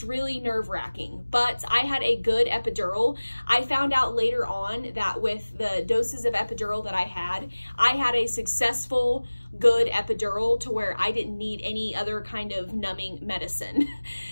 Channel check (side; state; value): both; inverted; correlation -1.00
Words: really nerve-wracking. But I had a good epidural. I found out later on that with the doses of epidural that I had a successful, good epidural to where I didn't need any other kind of numbing medicine.